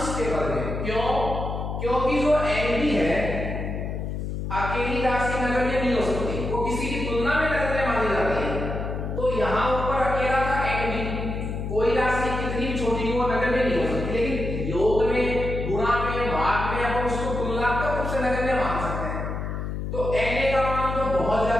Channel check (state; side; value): noise; left; hum, 4 dB below the sound